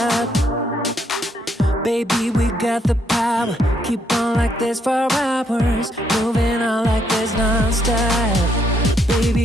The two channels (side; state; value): both; normal; correlation 0.73